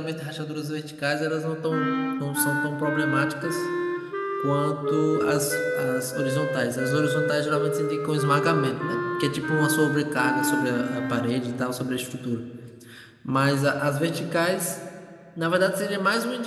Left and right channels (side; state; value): both; identical; correlation 1.00